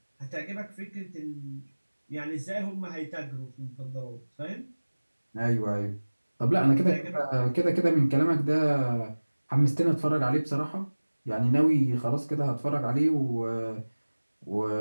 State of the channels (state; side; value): inverted; both; correlation -1.00